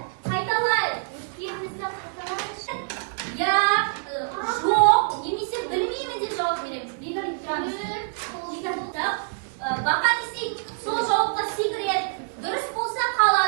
Қайталайық. Өткенімізді қайталайықшы. Я, жоқ, немесе білмеймін деп жауап береміз. Бегали, тұрамыз. Бақан істейді, сол жауапқа секіреді. Дұрыс болса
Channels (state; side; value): silent; left; digital silence